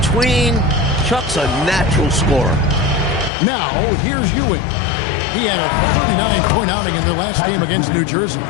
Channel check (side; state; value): right; drops out; at 3.3 s